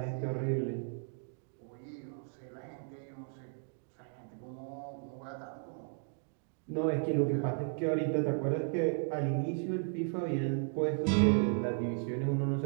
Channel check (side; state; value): left; silent; 54 dB below the other